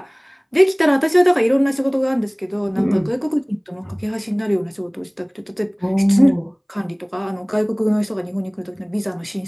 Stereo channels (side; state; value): both; identical; correlation 1.00